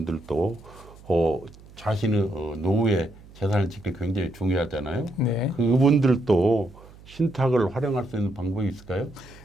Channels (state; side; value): noise; right; hum, 22 dB below the sound